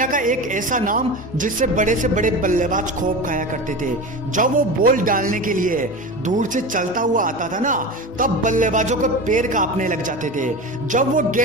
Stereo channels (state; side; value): normal; both; correlation 0.28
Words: का एक ऐसा नाम जिससे बड़े से बड़े बल्लेबाज खौफ खाया करते थे। जब वो बॉल डालने के लिए दूर से चलता हुआ आता था ना, तब बल्लेबाजों के पैर कांपने लग जाते थे। जब वो